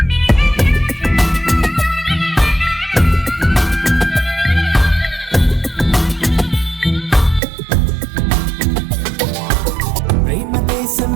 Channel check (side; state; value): left; drops out; at 7.4 s